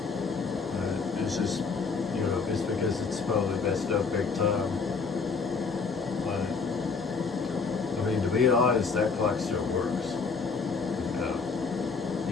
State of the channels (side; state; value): right; quieter; 4.9 dB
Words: It's just, you know, it's because it's probably messed up big time. But I mean, to be honest, that clock still works.